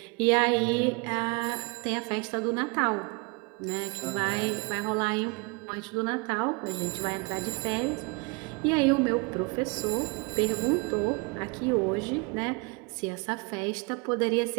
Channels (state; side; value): quieter; left; 29.8 dB